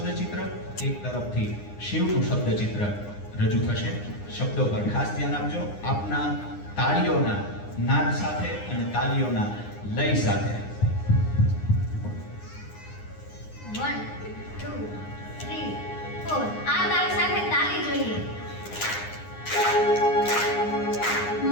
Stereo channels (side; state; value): right; late; 9.8 ms